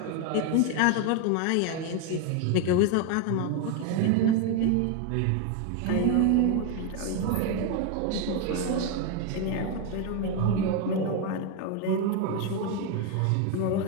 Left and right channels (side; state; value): both; different; correlation 0.01